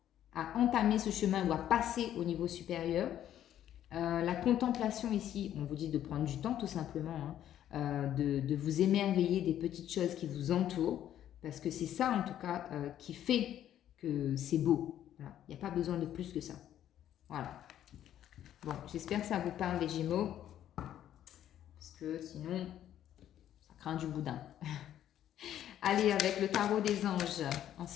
à entamer ce chemin ou à passer au niveau supérieur. La contemplation ici, on vous dit de prendre du temps tout simplement, hein, de vous émerveiller des petites choses qui vous entourent, parce que c'est ça en tout cas qui fait que c'est beau. Voilà. Il n'y a pas besoin de plus que ça. Voilà. Bon, j'espère que ça vous parle les Gémeaux, parce que sinon, ça craint du boudin. Allez, avec le tarot des anges, en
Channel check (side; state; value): right; quieter; 11.2 dB